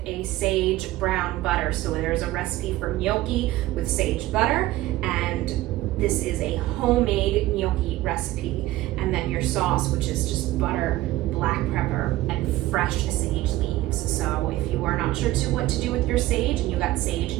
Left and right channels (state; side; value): quieter; left; 16.6 dB